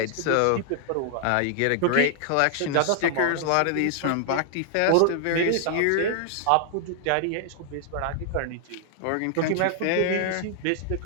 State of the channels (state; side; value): different; both; correlation 0.00